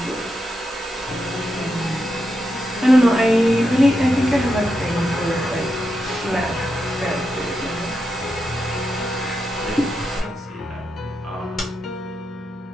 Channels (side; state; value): both; normal; correlation 0.86